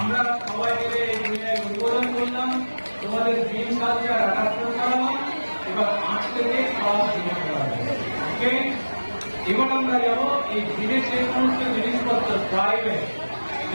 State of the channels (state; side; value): inverted; both; correlation -1.00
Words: সবাই মিলে উদ্বোধন করলাম, তোমাদের গ্রিন কালচার অ্যাডাপ্ট করালাম। এবার 8 থেকে ক্লাস শুরু করা হবে। ওকে, এবার আমরা যাবো এই গ্রিনের যে সমস্ত জিনিসপত্র প্রাইভেট